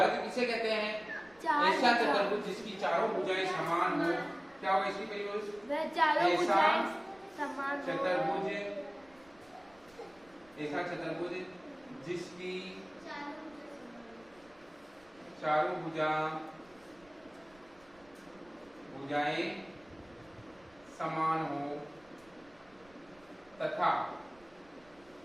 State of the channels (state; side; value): noise; right; rumble, 28 dB below the sound